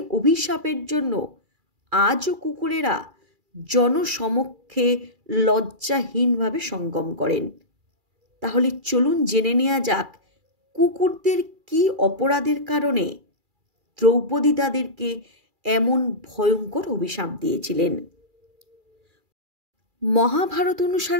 অভিশাপের জন্য আজও কুকুরেরা জনসমক্ষে লজ্জাহীনভাবে সঙ্গম করেন। তাহলে চলুন জেনে নেওয়া যাক কুকুরদের কী অপরাধের কারণে দ্রৌপদী তাদেরকে এমন ভয়ঙ্কর অভিশাপ দিয়েছিলেন। মহাভারত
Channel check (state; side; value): late; left; 2.3 ms